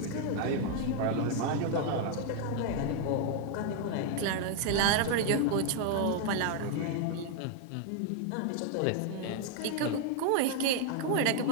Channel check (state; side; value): different; both; correlation 0.00